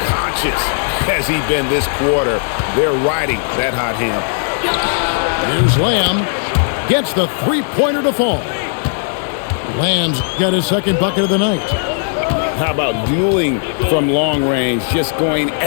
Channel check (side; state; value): right; silent; digital silence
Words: has he been this quarter. They're riding that hot hand. Here's Lamb. Gets the three-pointer to fall. Lamb's got his second bucket of the night. How about dueling from long range, just going